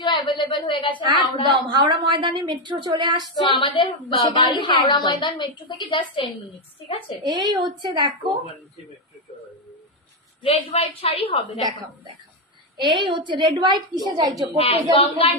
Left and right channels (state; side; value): normal; both; correlation 0.05